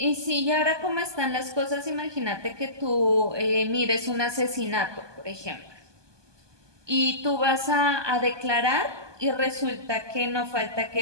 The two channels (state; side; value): late; left; 1.2 ms